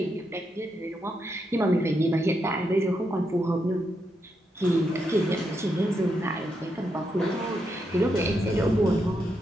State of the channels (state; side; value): normal; both; correlation 0.82